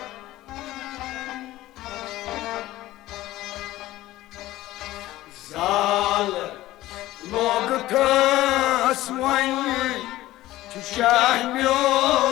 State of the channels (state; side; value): quieter; right; 16.2 dB